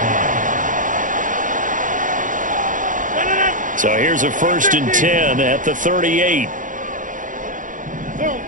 So here's a 1st and 10 at the 38.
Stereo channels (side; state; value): left; late; 0.38 ms